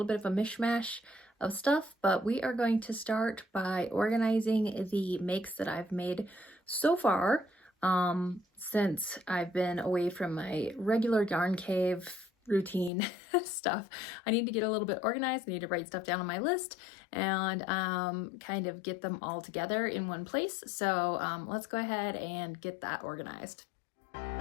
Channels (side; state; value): right; drops out; at 12.9 s